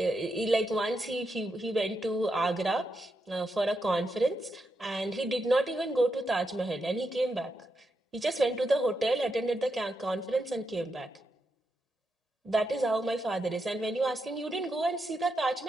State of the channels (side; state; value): both; normal; correlation 0.84